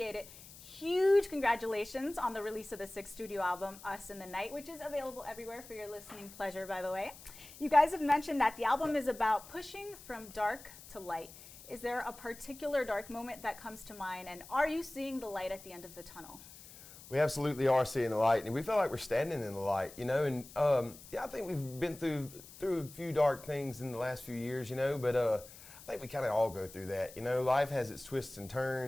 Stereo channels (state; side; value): noise; left; hiss, 18 dB below the sound